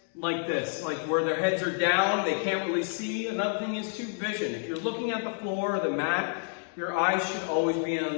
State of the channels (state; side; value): silent; right; 56 dB below the other